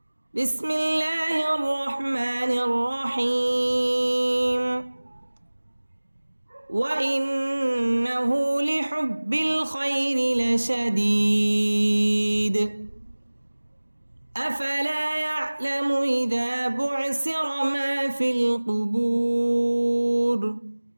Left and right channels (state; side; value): inverted; both; correlation -1.00